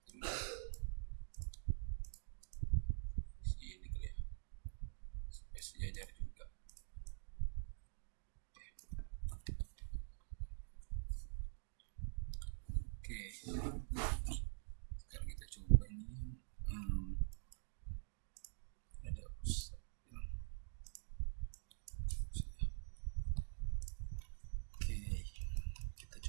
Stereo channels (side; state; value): left; silent; digital silence